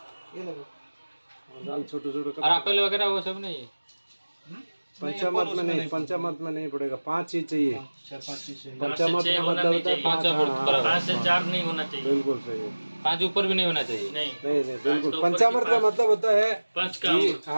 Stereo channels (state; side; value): inverted; both; correlation -1.00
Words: ये लो दाल छोटे छोटे और एप्पल वगैरह वो सब नहीं है पंचामृत में नहीं, पंचामृत में नहीं पड़ेगा, 5 चीज चाहिए। 4-5 चीज पंचामृत में मतलब होता है 5 हाँ, 5 से 4 नहीं होना चाहिए, बिल्कुल सही है। 5 ऊपर भी नहीं होना चाहिए। नहीं बिल्कुल। पंचामृत का मतलब होता है